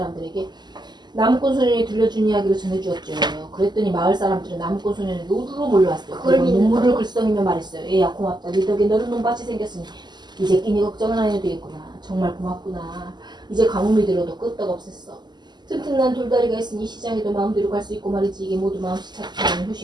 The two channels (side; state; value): left; late; 0.21 ms